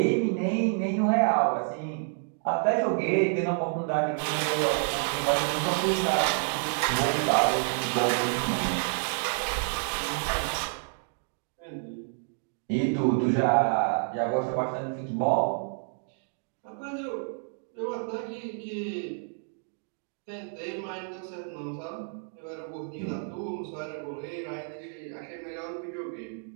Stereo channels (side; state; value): left; silent; 58 dB below the other